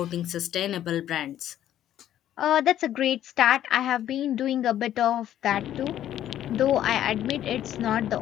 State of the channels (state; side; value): quieter; right; 11.6 dB